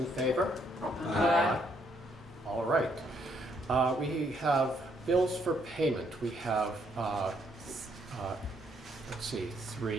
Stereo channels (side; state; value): both; normal; correlation 0.71